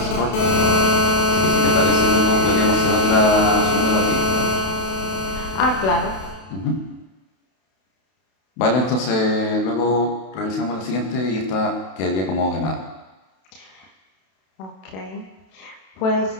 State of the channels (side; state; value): right; late; 32 ms